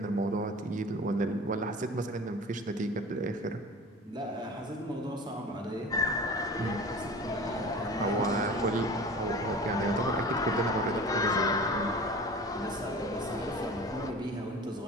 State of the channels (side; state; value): both; normal; correlation 0.38